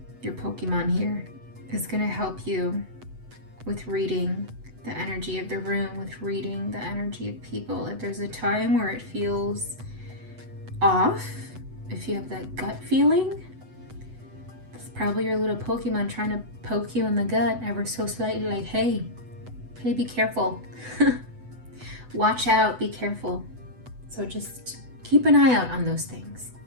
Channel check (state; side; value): late; left; 8.0 ms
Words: your Pokemon here is going to help you with reading the energy of the room, with reading the energy of people. If there's a time where it feels off, if you have that gut feeling, it's probably your little Pokemon trying to poke you in the gut ever so slightly, like, hey, be careful. Watch out, be careful. So just keep an eye out on those things.